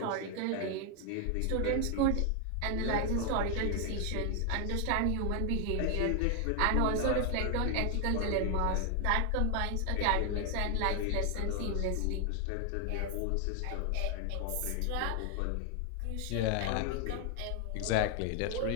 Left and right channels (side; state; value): both; different; correlation 0.00